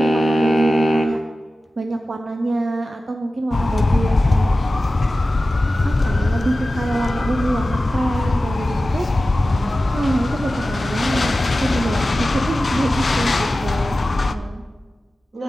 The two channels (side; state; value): both; normal; correlation 0.95